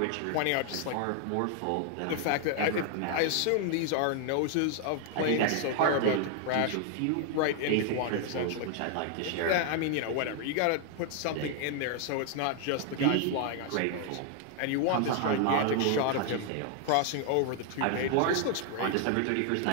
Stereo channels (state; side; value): different; both; correlation 0.00